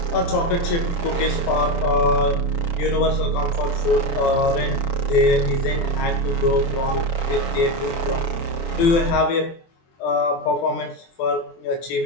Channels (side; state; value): right; late; 24 ms